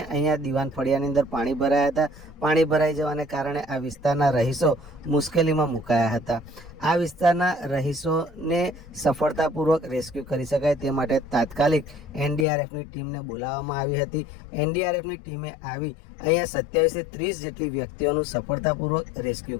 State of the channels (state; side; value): drops out; right; at 12.5 s